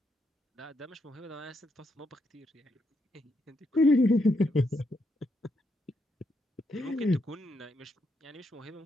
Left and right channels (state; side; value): normal; both; correlation 0.79